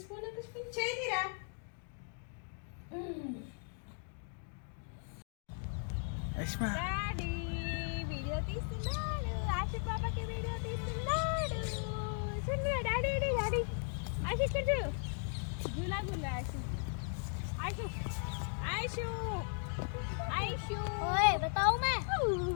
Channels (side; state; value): right; silent; 53 dB below the other